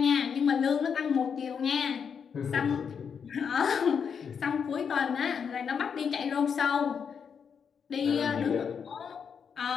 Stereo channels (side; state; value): right; quieter; 6.8 dB